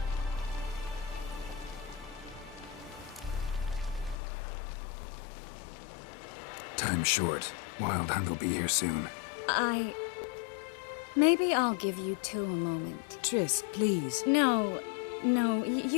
Time's short. Wild Hunt will be here soon. Maybe I'll give you two a moment. Triss, please. No,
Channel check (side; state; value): right; drops out; at 4.2 s